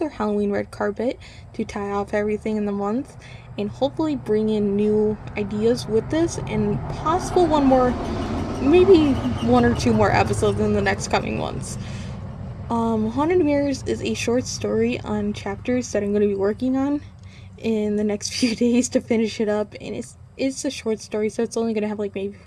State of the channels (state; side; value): identical; both; correlation 1.00